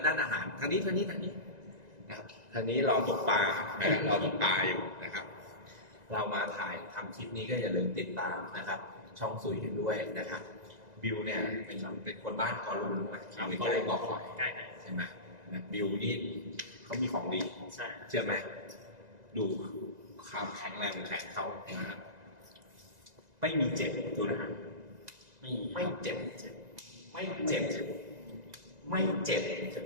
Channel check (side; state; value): left; late; 2.0 ms